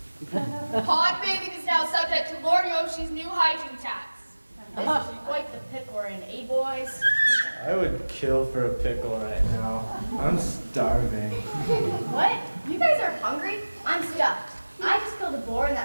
Pond bathing is now subject to Lord Yoshi's new hygiene tax. This is quite the pickle we're in, eh, boys? I would kill for a pickle right now. I'm starving. What? You guys are hungry? I'm stuffed. I just killed a boar in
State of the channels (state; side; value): inverted; both; correlation -1.00